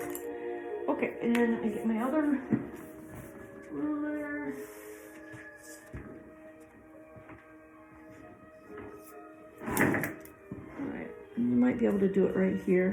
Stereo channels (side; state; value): both; identical; correlation 1.00